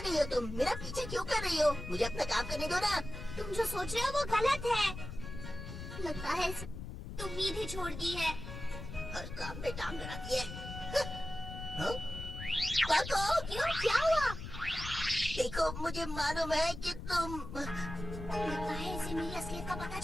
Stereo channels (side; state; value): left; noise; rumble, 9 dB below the sound